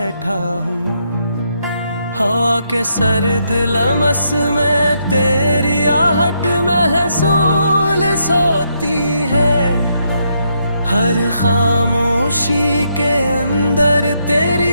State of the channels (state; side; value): inverted; both; correlation -0.77